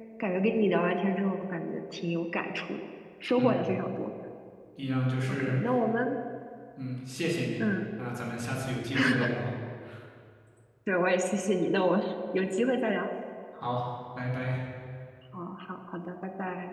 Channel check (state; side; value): identical; both; correlation 1.00